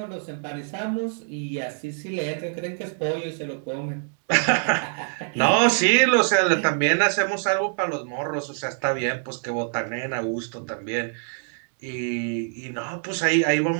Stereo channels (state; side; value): silent; left; 59 dB below the other